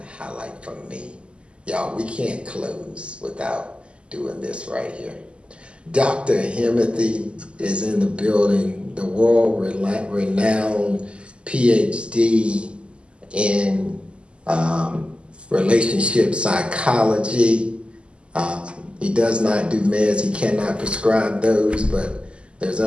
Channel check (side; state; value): left; late; 0.053 ms